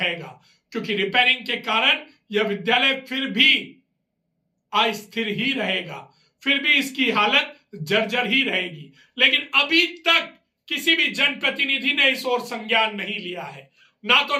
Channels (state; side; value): identical; both; correlation 1.00